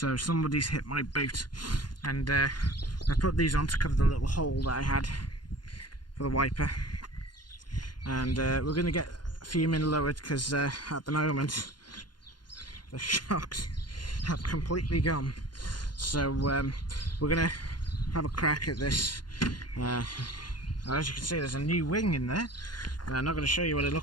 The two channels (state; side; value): late; right; 0.71 ms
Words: somebody's hit my boot, and I put these on to cover the little hole that I had for the wiper. And we're going to get FUMIN lowered because at the moment the shocks have completely gone. So we're going to have a crack at this. As you can see, there's a new wing in there, and I'm not going to show you what it